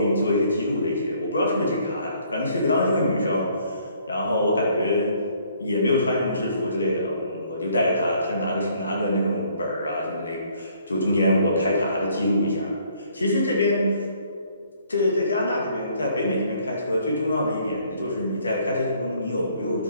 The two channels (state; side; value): inverted; both; correlation -0.63